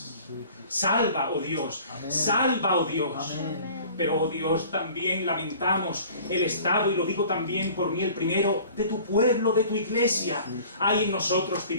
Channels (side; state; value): both; inverted; correlation -0.47